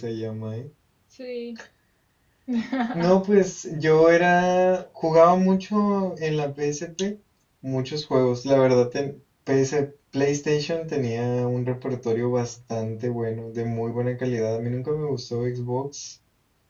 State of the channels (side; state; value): both; identical; correlation 1.00